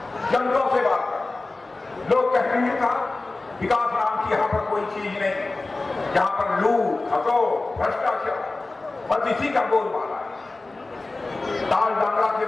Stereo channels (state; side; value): quieter; right; 3.3 dB